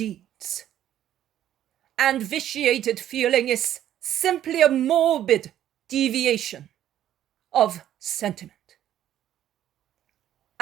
And vitiated feeling is simply a morbid deviation of sentiment.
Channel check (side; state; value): left; quieter; 11.5 dB